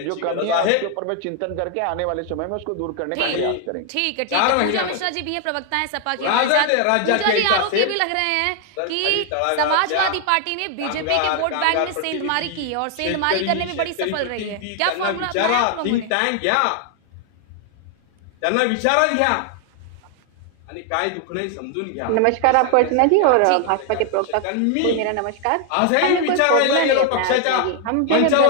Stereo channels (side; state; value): both; different; correlation 0.00